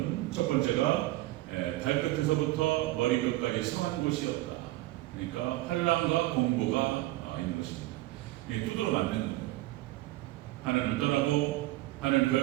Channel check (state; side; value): quieter; left; 18.0 dB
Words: 첫 번째가 발끝에서부터 머리끝까지 성한 곳이 없다. 그러니까 환난과 공고가 있는 것입니다. 이게 두드러 맞는 거예요. 하나님을 떠나고 하나님을